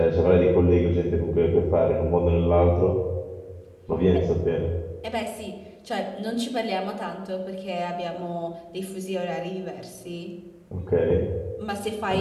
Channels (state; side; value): identical; both; correlation 1.00